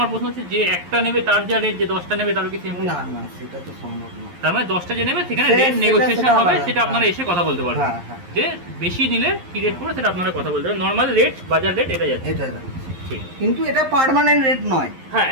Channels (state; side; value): late; left; 11 ms